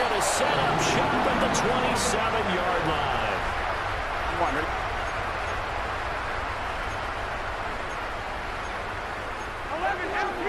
going to set up shop at the 27-yard line. Come on, ready?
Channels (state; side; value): identical; both; correlation 1.00